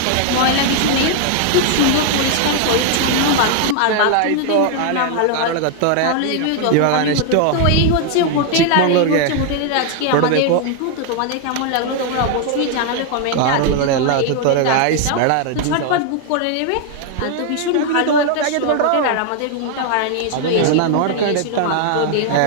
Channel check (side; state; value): both; different; correlation 0.00